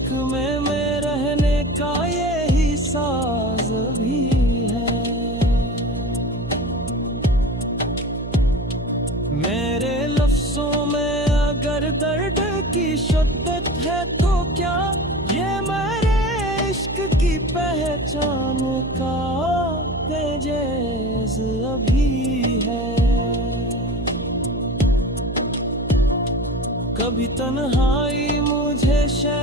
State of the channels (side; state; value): right; noise; hum, 8 dB below the sound